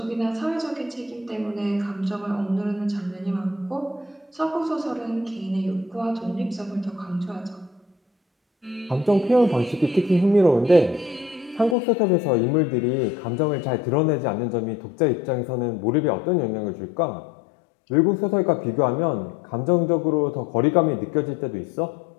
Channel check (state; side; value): drops out; right; at 11.8 s